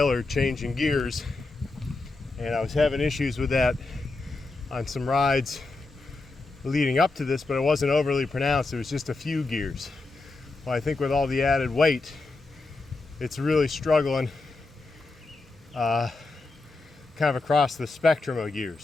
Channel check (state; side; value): quieter; right; 3.4 dB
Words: changing gears, and I was having issues with that on some rides leading up to this, but it wasn't overly pronounced. It was just a few gears. Well, I think with all the added weight, it's really struggling kind of across the spectrum of